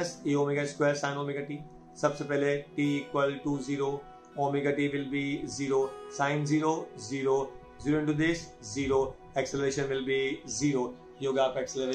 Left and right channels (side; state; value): both; identical; correlation 1.00